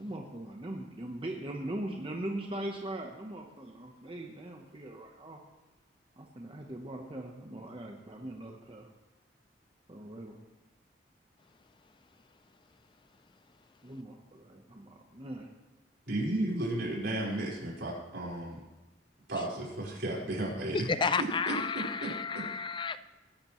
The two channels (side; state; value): both; normal; correlation 0.32